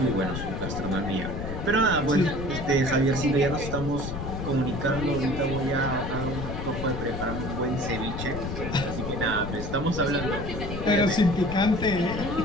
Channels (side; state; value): left; noise; rumble, 6 dB below the sound